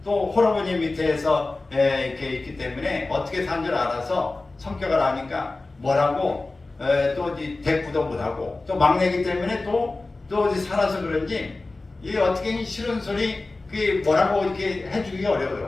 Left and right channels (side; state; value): right; quieter; 3.3 dB